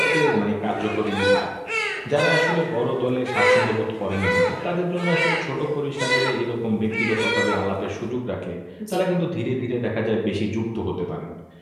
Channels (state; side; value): identical; both; correlation 1.00